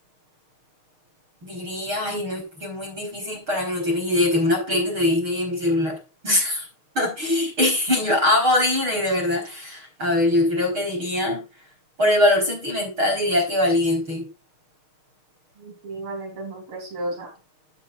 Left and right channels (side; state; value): left; late; 6.4 ms